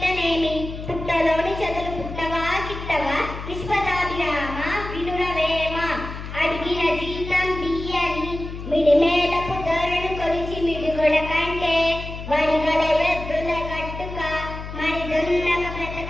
పుట్టలోని చదులు పుట్టవా గిట్టవా విశ్వదాభిరామ వినురవేమ అడిగిన జీతం బియ్యని మిడిమేలపు ధరను కొలిచి మిడిగొడ కంటే వడిగల ఎద్దుల గట్టుక మరి దొన్నక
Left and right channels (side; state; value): left; noise; hum, 9 dB below the sound